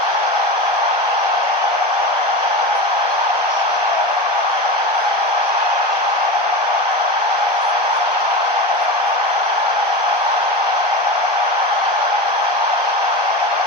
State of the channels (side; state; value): left; late; 1.5 ms